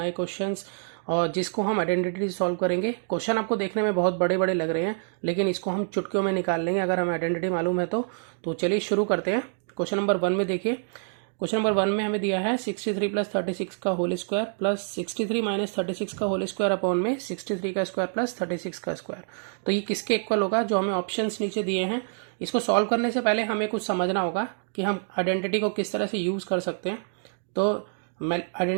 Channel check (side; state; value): left; silent; 60 dB below the other